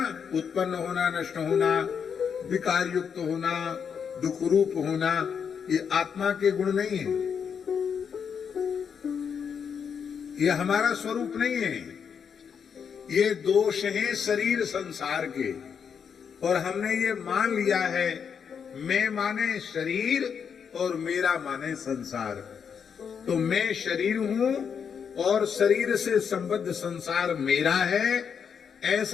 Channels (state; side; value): quieter; right; 7.0 dB